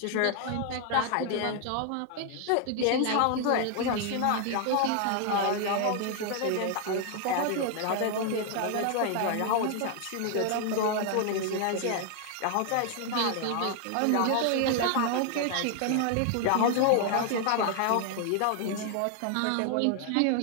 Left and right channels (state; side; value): different; both; correlation 0.00